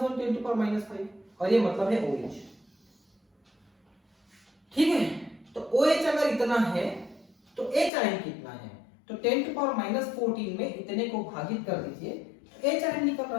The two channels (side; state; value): right; drops out; at 7.9 s